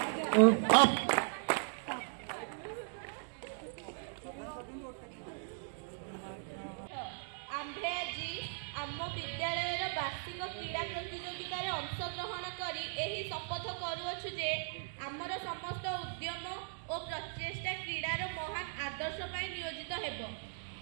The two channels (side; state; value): left; silent; digital silence